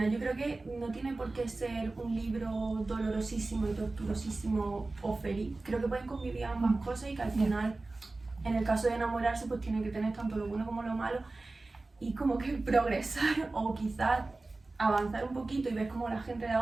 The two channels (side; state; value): left; quieter; 3.3 dB